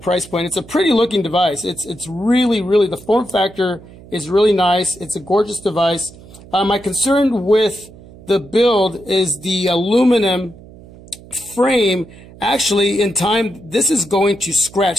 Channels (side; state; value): right; noise; hum, 20 dB below the sound